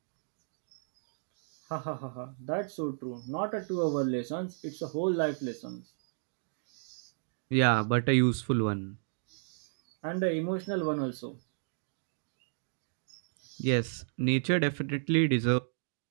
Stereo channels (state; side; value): silent; left; digital silence